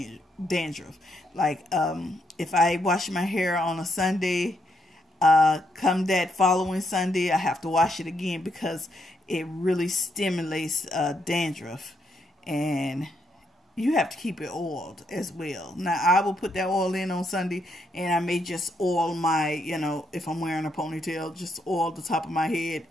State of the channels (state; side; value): normal; both; correlation 0.77